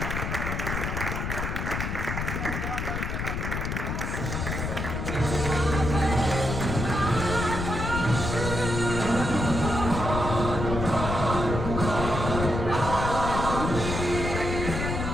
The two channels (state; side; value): noise; left; rumble, 3 dB below the sound